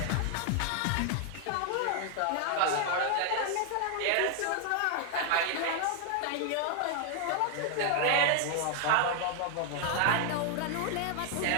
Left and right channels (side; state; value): both; different; correlation 0.00